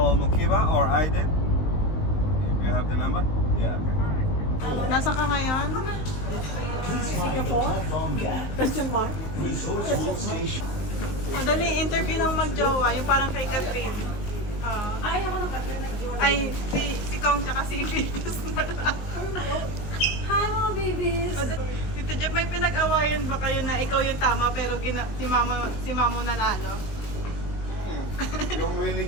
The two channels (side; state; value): right; late; 19 ms